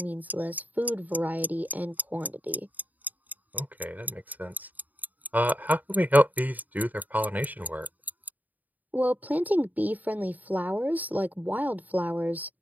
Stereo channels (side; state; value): left; late; 0.081 ms